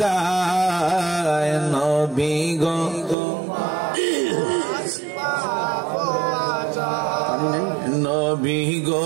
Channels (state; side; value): drops out; left; at 3.2 s